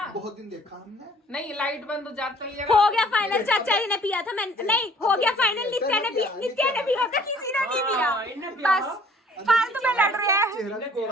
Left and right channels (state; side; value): normal; both; correlation 0.55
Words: बहुत दिन देखा हमने। नहीं लाइट बंद हो जाता ही हो गया फाइनल, चाचा जी ने पिया था, मैं नहीं, हो गया फाइनल, नित्या ने पिया, नित्या ने पिया था, किसी ने नहीं पिया। बस फालतू में लड़ रहे हैं। चेहरा भी